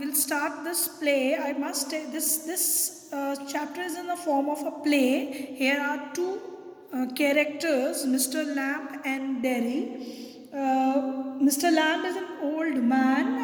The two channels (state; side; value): identical; both; correlation 1.00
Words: start this play, I must say this chapter is in the form of a play. Here are two characters, Mr. Lamb and Derry. Mr. Lamb is an old